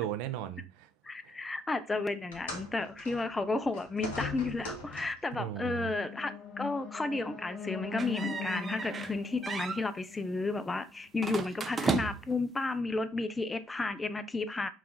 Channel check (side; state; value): both; normal; correlation 0.77